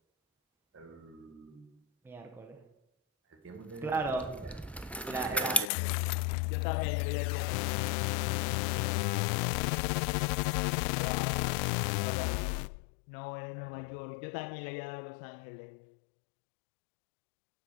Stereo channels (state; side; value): drops out; right; at 5.7 s